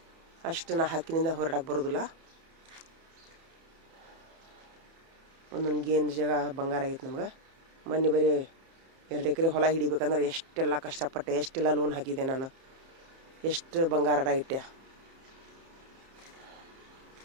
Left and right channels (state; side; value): late; left; 30 ms